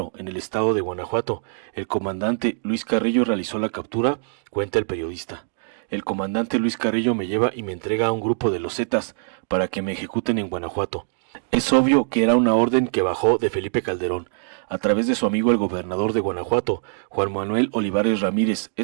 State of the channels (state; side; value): silent; left; digital silence